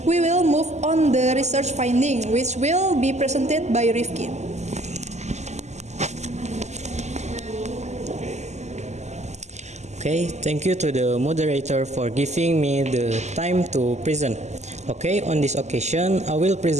we will move on the research finding, which will be presented by Rifki. Okay, thank you to the moderator for giving me the time to present. Okay, on this occasion, I will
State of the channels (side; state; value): left; late; 0.33 ms